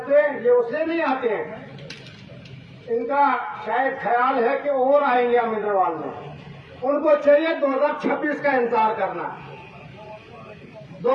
ये उससे नहीं आते हैं। इनका शायद ख्याल है कि और आएंगे अमिंदरवाल में। उनको चाहिए 2026 का इंतजार करना।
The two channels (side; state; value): both; identical; correlation 1.00